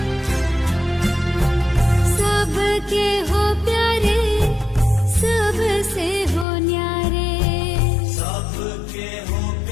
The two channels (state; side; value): drops out; right; at 6.5 s